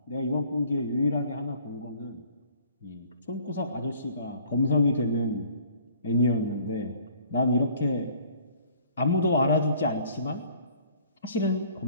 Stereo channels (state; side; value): inverted; both; correlation -0.55